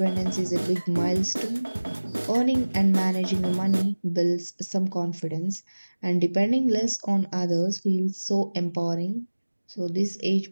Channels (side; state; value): both; inverted; correlation -1.00